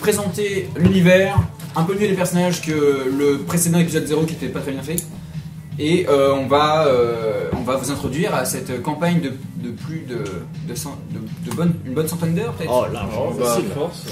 l'univers, un peu mieux les personnages que le précédent épisode 0 qui était pas très bien fait. Et on va vous introduire à cette campagne de plus une bonne centaine d'heures peut-être. Oh, largement facile. Force.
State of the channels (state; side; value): identical; both; correlation 1.00